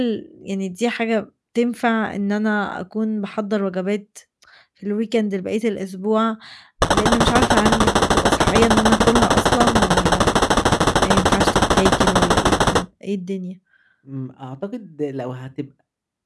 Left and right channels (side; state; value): both; identical; correlation 1.00